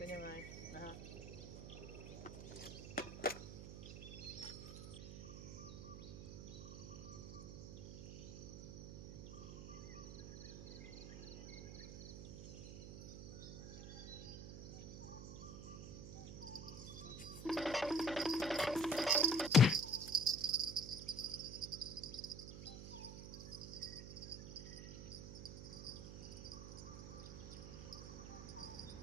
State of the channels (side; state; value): right; noise; hum, 9 dB below the sound